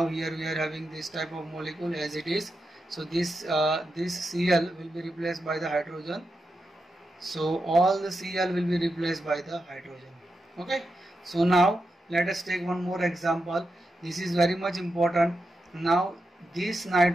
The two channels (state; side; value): normal; both; correlation 0.88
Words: here we are having this type of molecule as it is. So this Cl will be replaced by the hydrogen. So all the Cl will be replaced by the hydrogen. Okay, so now let us take one more example. This is very much important. Now this